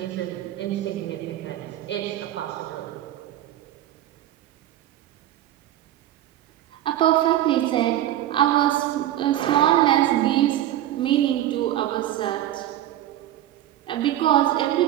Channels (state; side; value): quieter; left; 12.8 dB